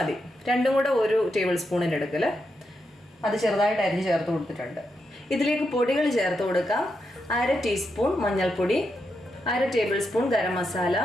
രണ്ടും കൂടെ 1 ടേബിൾ സ്പൂണിൻ്റെ എടുക്കൽ, അത് ചെറുതായിട്ട് അരിഞ്ഞ് ചേർത്ത് കൊടുത്തിട്ടുണ്ട്. ഇതിലേക്ക് പൊടികൾ ചേർത്ത് കൊടുക്കാം. 1/2 ടീസ്പൂൺ മഞ്ഞൾപ്പൊടി, 1/2 table spoon garam masala,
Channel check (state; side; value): normal; both; correlation 0.84